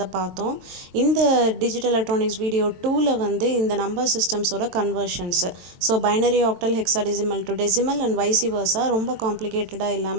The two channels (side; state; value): left; late; 22 ms